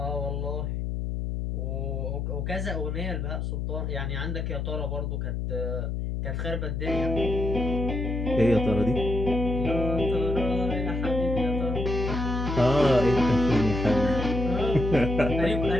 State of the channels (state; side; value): noise; left; hum, 2 dB below the sound